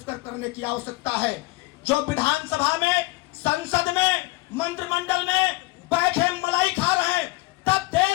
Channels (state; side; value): quieter; right; 22.2 dB